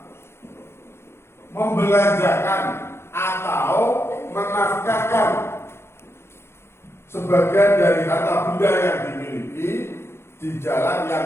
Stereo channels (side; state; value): right; late; 0.12 ms